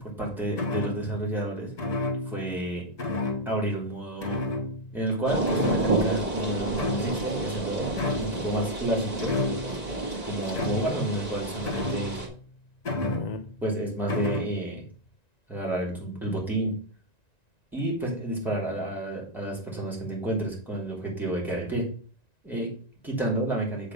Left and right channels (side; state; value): right; late; 1.9 ms